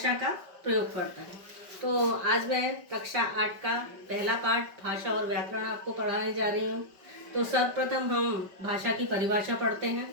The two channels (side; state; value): left; late; 5.2 ms